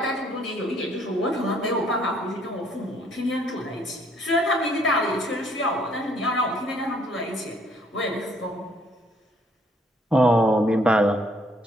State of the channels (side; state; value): both; normal; correlation 0.64